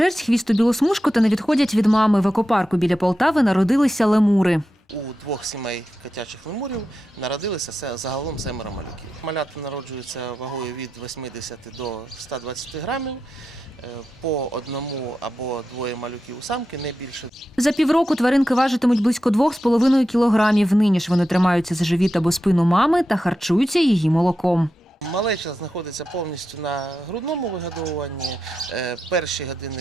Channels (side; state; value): both; normal; correlation 0.89